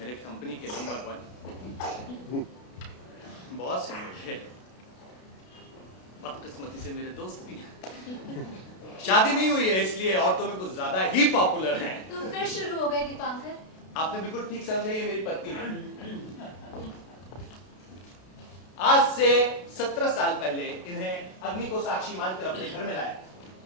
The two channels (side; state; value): right; late; 32 ms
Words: कंपनी के नंबर 1 बॉस हैं मेरे, बदकिस्मती से मेरे दोस्त भी हैं। शादी नहीं हुई है इसलिए औरतों में कुछ ज्यादा ही पॉपुलर हैं। तुम फिर शुरू हो गए दीपांकर। आपने बिल्कुल ठीक समझा, ये मेरी पत्नी है। आज से 17 साल पहले इन्हें अग्नि को साक्षी मानकर अपने घर में लाया।